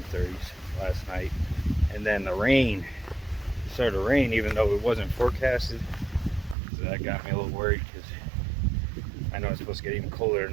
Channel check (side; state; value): left; drops out; at 6.6 s